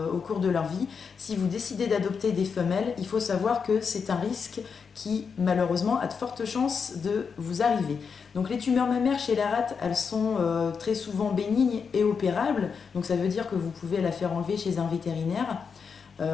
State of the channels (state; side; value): quieter; right; 5.9 dB